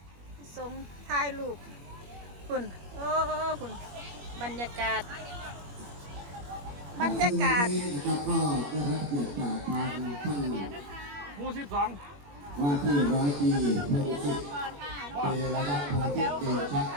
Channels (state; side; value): late; left; 21 ms